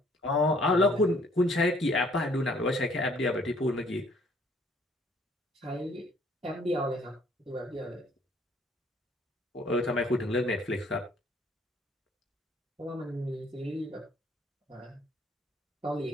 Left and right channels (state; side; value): normal; both; correlation 0.61